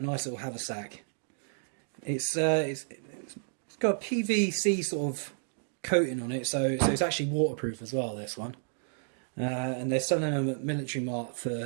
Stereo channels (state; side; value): silent; left; digital silence